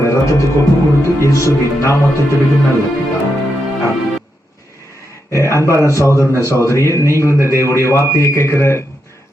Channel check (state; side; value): normal; both; correlation 0.84